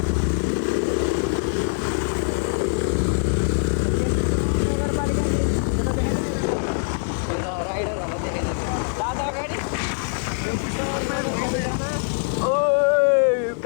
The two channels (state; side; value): silent; right; 63 dB below the other